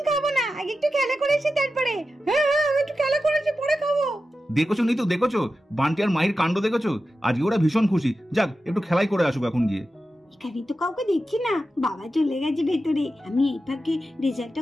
খাবো না, আগে একটু খেলা করে এসে তারপরে। হ্যাঁ হ্যাঁ, একটু খেলা করে এসে পরে খাবো। দেখেছো নি তো, দেখেছো বান্টি আর মাহির কাণ্ড দেখেছো? আজকে ওরা ভীষণ খুশি। যাক, একটু খেলাই করে আসুক এখন গিয়ে। এখানে তো কাউকে দেখছি না, বাবা চলে গেছে ভেতরে। আমি এই ফাঁকে রেজাল্টটা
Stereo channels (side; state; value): both; normal; correlation 0.92